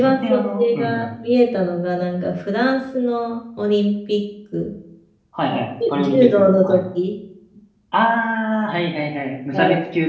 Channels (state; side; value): identical; both; correlation 1.00